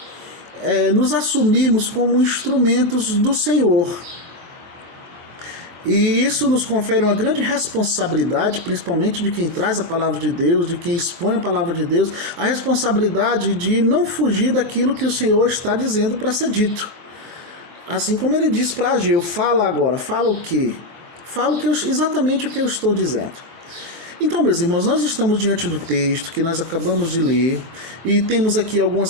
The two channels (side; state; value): left; late; 22 ms